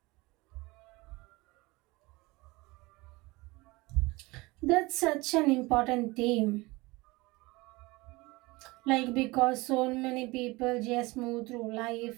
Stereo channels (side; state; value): left; quieter; 22.7 dB